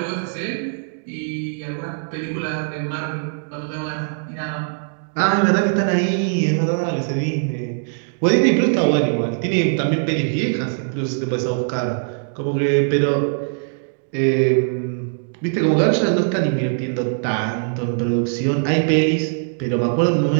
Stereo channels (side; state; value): left; silent; digital silence